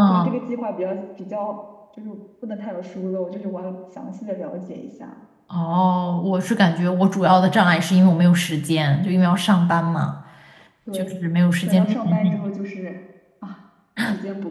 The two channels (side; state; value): both; identical; correlation 1.00